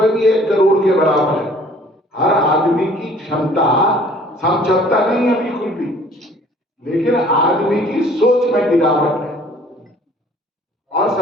भी 1 करोड़ के बराबर है। हर आदमी की क्षमता समझौता नहीं है बिल्कुल भी, लेकिन आदमी की सोच में गिरावट है। और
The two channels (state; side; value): normal; both; correlation 0.54